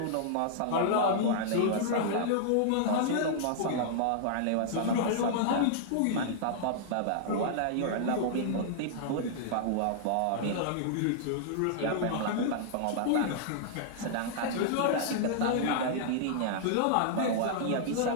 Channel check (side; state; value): both; different; correlation -0.01